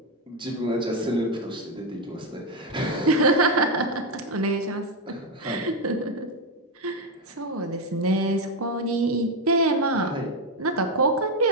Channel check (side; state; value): both; normal; correlation 0.07